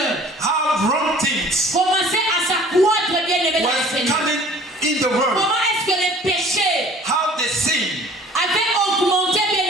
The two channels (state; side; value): normal; both; correlation 0.50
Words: how wrong things commençaient à s'accroître, bien aimé, dans le was Seigneur? coming in the world, Comment est-ce que les péchés how the sin avaient augmenté, bien